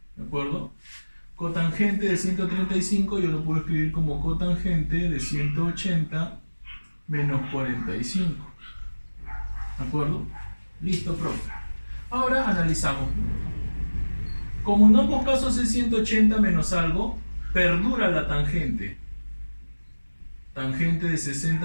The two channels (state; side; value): inverted; both; correlation -1.00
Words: ¿De acuerdo? Cotangente de 135 yo lo puedo escribir como cotangente de 180 menos 45. ¿De acuerdo? Listo, profe. Ahora analizamos. Como en ambos casos es 180 menos algo, perdura la tangente. Tangente de